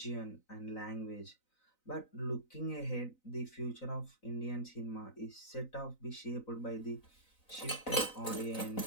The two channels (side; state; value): right; late; 3.9 ms